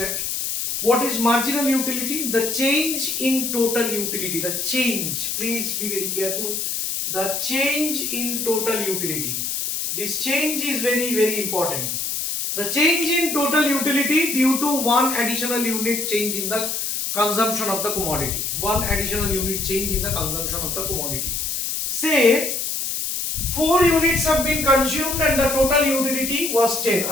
What is marginal utility? The change in total utility. The change, please be very careful. The change in total utility. This change is very, very important. The change in total utility due to one additional unit change in the consumption of the commodity. One additional unit change in the consumption of the commodity. Say 4 units have been consumed and the total utility was 10.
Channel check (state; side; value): noise; left; hiss, 2 dB below the sound